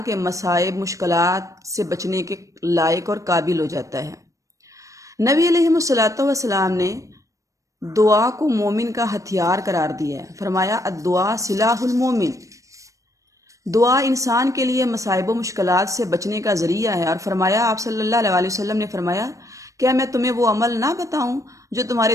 کے مصائب، مشکلات سے بچنے کے لائق اور قابل ہو جاتا ہے۔ نبی علیہ الصلوۃ والسلام نے دعا کو مومن کا ہتھیار قرار دیا ہے۔ فرمایا الدعاء سلاح المومن، دعا انسان کے لیے مصائب و مشکلات سے بچنے کا ذریعہ ہے۔ اور فرمایا آپ صلی اللہ علیہ وسلم نے فرمایا کیا میں تمہیں وہ عمل نہ بتاؤں جو تمہارے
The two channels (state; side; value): late; left; 0.16 ms